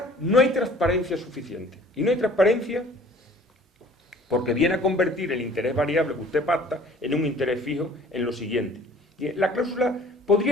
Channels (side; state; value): both; normal; correlation 0.51